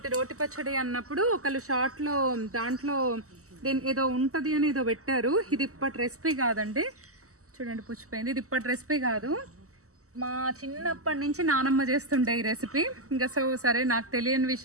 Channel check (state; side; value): late; left; 0.65 ms